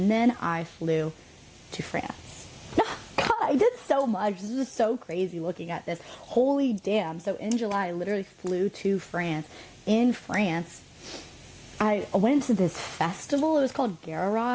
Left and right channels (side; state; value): both; identical; correlation 1.00